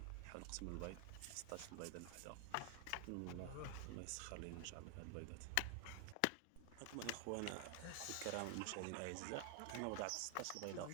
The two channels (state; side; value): different; both; correlation 0.00